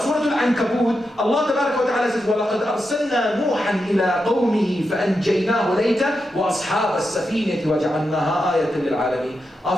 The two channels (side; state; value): both; normal; correlation 0.87